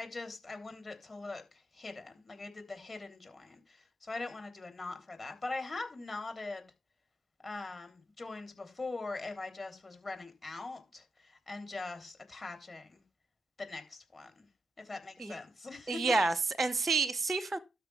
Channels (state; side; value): normal; both; correlation 0.82